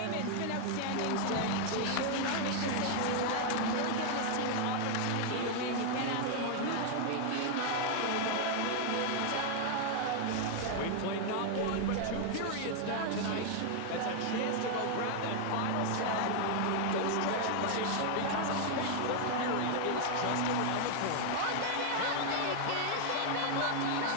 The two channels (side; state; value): both; different; correlation 0.00